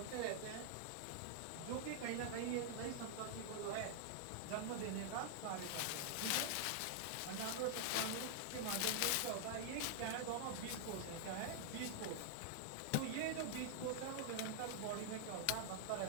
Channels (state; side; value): different; both; correlation -0.01